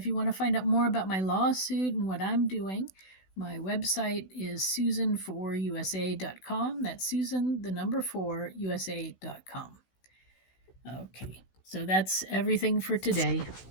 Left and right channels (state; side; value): late; right; 16 ms